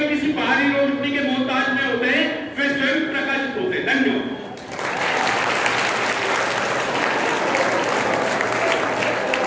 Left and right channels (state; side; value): identical; both; correlation 1.00